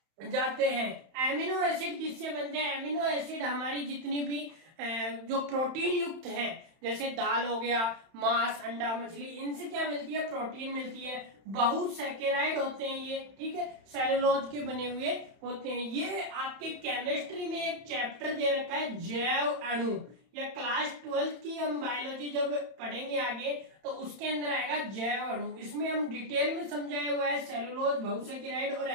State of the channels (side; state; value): left; late; 31 ms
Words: जाते हैं। एमिनो एसिड किससे बनते हैं? एमिनो एसिड हमारी जितनी भी जो प्रोटीन युक्त है, जैसे दाल हो गया, मांस, अंडा, मछली, इनसे क्या मिलती है? प्रोटीन मिलती है। बहुसैकराइड होते हैं ये, ठीक है, सेलुलोज के बने हुए होते हैं। ये आपके केमिस्ट्री में एक चैप्टर दे रखा है जैव अणु, या क्लास 12 की हम बायोलॉजी जब पढ़ेंगे आगे तो उसके अंदर आएगा जैव अणु। इसमें हम डिटेल में समझाया हुआ है सेलुलोज, बहुसैकराइड और